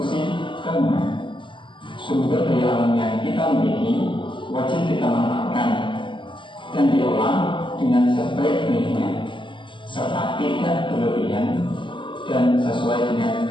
bangunan. Sumber daya alam yang kita miliki wajib kita manfaatkan dan diolah dengan sebaik-baiknya serta tidak berlebihan dan sesuai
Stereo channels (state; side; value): late; right; 0.24 ms